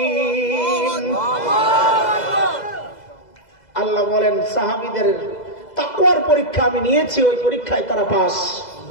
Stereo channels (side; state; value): right; late; 2.0 ms